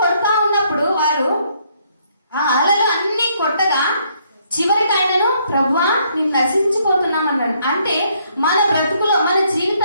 కొడతా ఉన్నప్పుడు వారు ఆ అలలు అన్ని కొట్టగా చివరికి ఆయనను, ప్రభువా నేను నశించిపోతున్నాం అన్నాడు. అంటే మన బ్రతుకులో, మన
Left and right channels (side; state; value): both; inverted; correlation -0.69